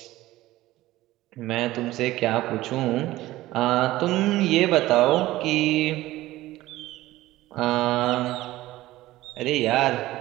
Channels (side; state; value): left; quieter; 16.7 dB